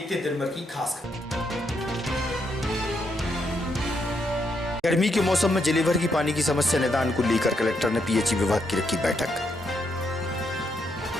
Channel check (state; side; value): normal; both; correlation 0.78